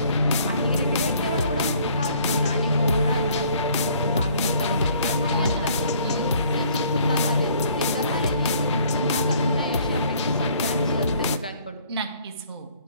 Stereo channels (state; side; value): inverted; both; correlation -0.58